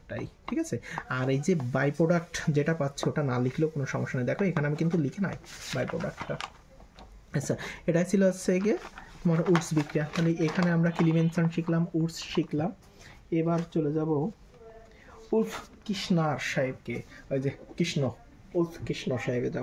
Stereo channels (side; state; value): both; identical; correlation 1.00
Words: ঠিক আছে। আর এই যে বাই প্রোডাক্ট যেটা পাচ্ছে ওটা না লিখলেও কোনো সমস্যা নেই, দেখো এখানে আমি কিন্তু লিখে নাই বাই প্রোডাক্টটা। আচ্ছা, এটাই ছিল হচ্ছে গিয়ে তোমার উডস বিক্রিয়া। তাহলে এখানে আমরা কিলিমেনশন শিখলাম, উডস শিখলাম। এবার চলে যাব উলফ কৃষ্ণার সাহেবকে, ওই যে উলফ কৃষ্ণ সাহেবে